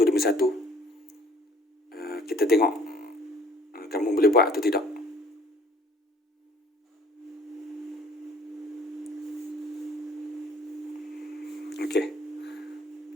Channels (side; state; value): both; normal; correlation 0.56